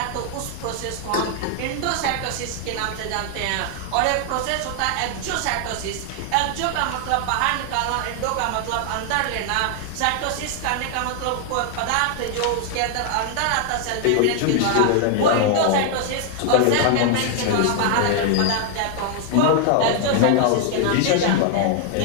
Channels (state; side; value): different; both; correlation 0.00